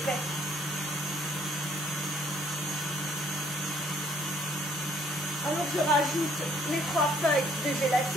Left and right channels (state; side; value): normal; both; correlation 0.64